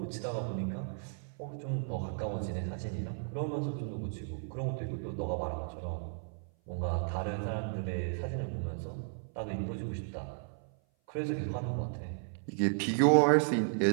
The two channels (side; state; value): left; silent; 55 dB below the other